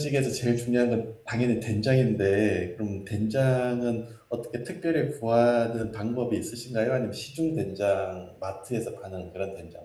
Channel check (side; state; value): both; identical; correlation 1.00